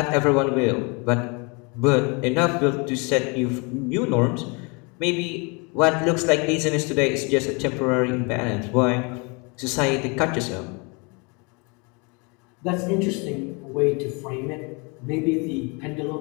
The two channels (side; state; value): right; quieter; 31.1 dB